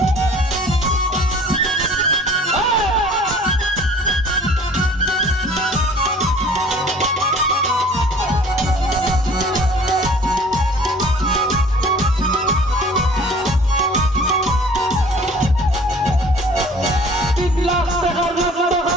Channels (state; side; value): normal; both; correlation 0.49